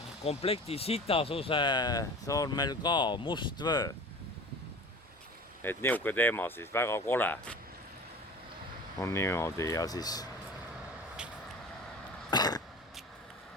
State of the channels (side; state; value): both; normal; correlation 0.39